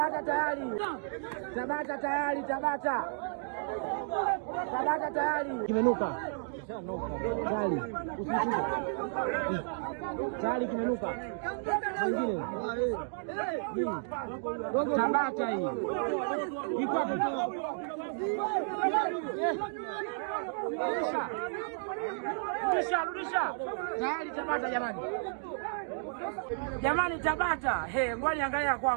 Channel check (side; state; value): left; silent; digital silence